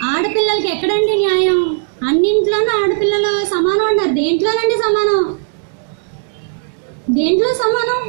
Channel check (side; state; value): left; silent; digital silence